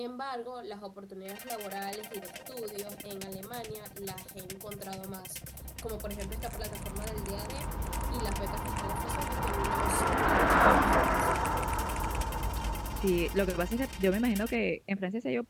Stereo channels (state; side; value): identical; both; correlation 1.00